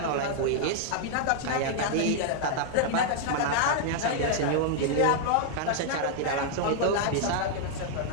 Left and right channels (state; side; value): different; both; correlation 0.00